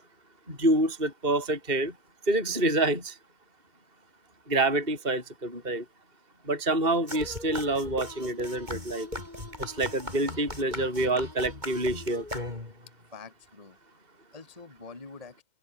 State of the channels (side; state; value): left; late; 2.1 ms